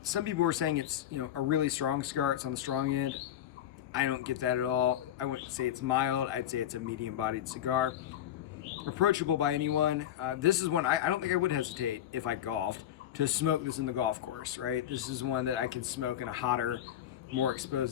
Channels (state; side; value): quieter; right; 11.2 dB